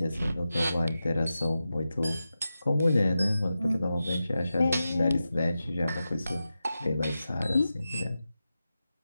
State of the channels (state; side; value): inverted; both; correlation -0.92